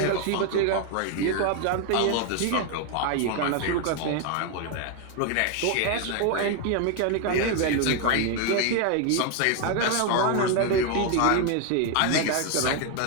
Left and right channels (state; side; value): different; both; correlation 0.01